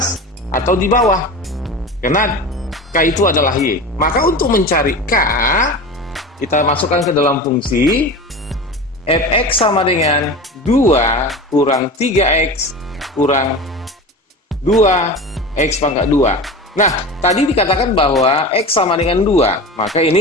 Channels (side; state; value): both; normal; correlation 0.30